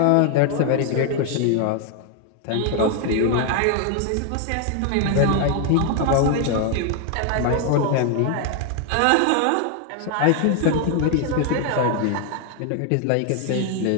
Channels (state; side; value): different; both; correlation 0.00